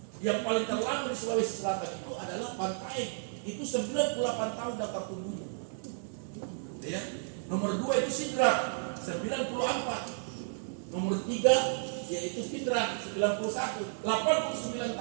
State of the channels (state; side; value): silent; left; digital silence